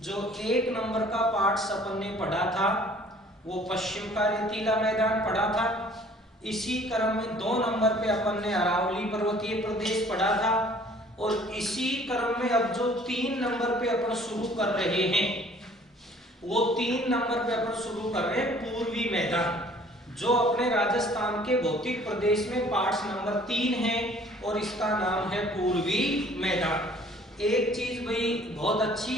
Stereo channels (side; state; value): both; normal; correlation 0.54